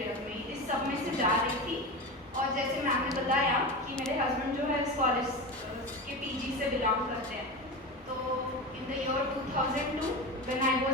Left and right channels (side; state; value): both; normal; correlation 0.24